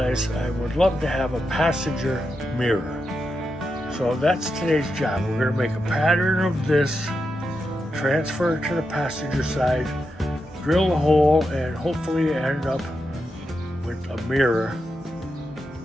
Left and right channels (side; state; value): both; normal; correlation 0.87